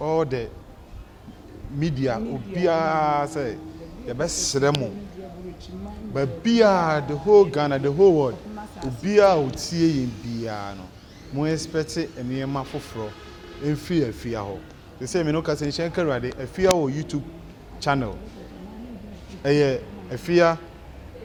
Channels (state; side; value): identical; both; correlation 1.00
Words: the media obia say ye besre mo but bia the whole Ghana the whole world obia otie yin bia no mo expect enema foforo Efya ho they say me no ka say shenka rade Efya o YouTube channel Efya